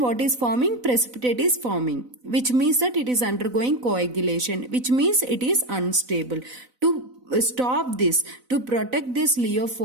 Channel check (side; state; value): left; late; 4.0 ms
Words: is forming? Precipitate is forming, which means that it is undergoing coagulation, which means it is unstable. To stop this, to protect this